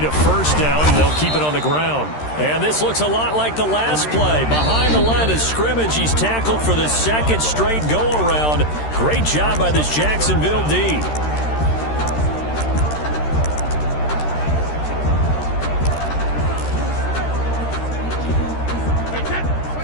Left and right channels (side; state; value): right; late; 13 ms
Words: a 1st down. They'll keep it on the ground. And this looks a lot like the last play. Behind the line of scrimmage, he's tackled for the 2nd straight go-around. Great job by this Jacksonville D.